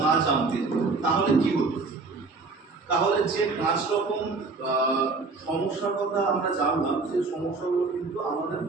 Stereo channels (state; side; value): quieter; left; 4.0 dB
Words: না জানতেন তাহলে কি হতো? তাহলে যে 5 রকম সমস্যার কথা আমরা জানলাম, সেই সমস্যাগুলো কিন্তু আমাদের